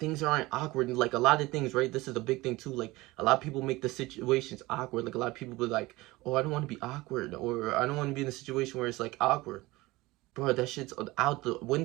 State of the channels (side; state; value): left; quieter; 20.4 dB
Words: aren't awkward. And like, a lot of things, right? This is a big thing too. Like, a lot of people make the situations awkward. Like, a lot of people be like, oh, I don't want to be awkward, or I don't want to be in a situation where it's like awkward. Bro, that shit's out the